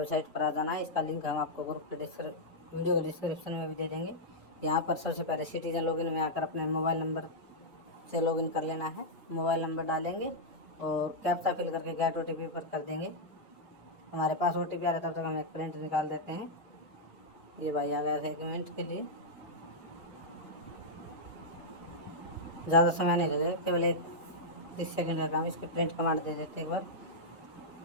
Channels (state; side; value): normal; both; correlation -0.07